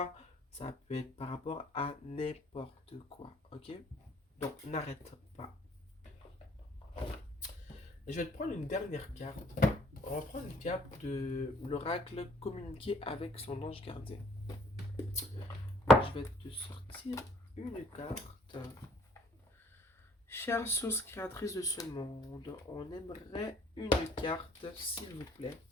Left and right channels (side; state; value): both; normal; correlation 0.60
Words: ça peut être par rapport à n'importe quoi. Ok? Donc, n'arrête pas. Je vais te prendre une dernière carte. On va prendre une carte de l'oracle communiquer avec son ange gardien. Je vais te sortir une carte. Chère source créatrice de ce monde, on aimerait une carte, s'il vous plaît,